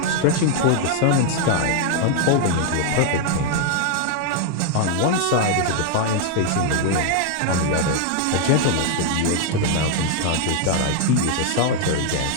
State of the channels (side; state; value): both; different; correlation 0.00